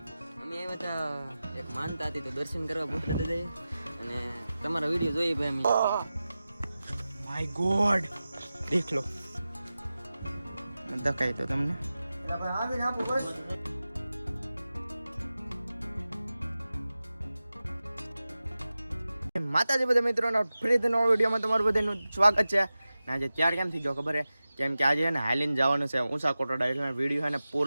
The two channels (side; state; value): both; inverted; correlation -0.95